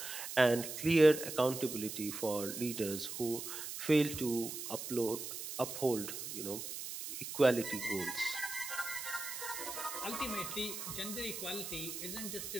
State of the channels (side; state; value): right; noise; hiss, 7 dB below the sound